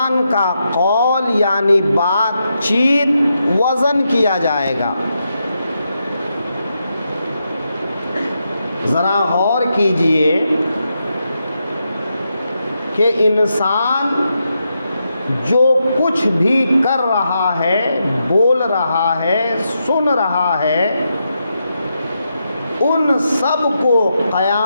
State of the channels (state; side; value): inverted; both; correlation -0.84